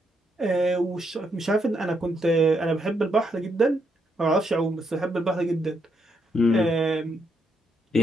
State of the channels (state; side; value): normal; both; correlation 0.77